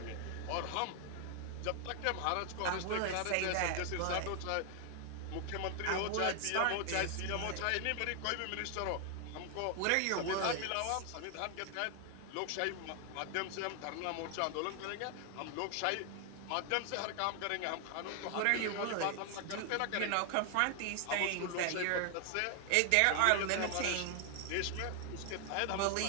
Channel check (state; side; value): different; both; correlation 0.00